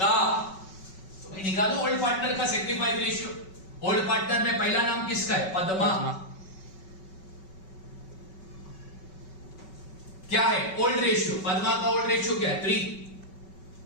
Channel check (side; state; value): right; late; 5.3 ms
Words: तो मैं निकालू ओल्ड पार्टनर का सेक्रीफाइस रेशियो। ओल्ड पार्टनर में पहला नाम किसका है? पद्मा। क्या है? Old ratio. पद्मा का ओल्ड रेशियो क्या है? 3।